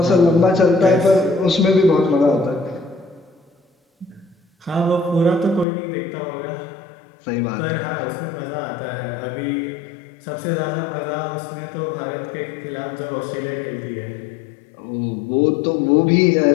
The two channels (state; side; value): drops out; right; at 5.7 s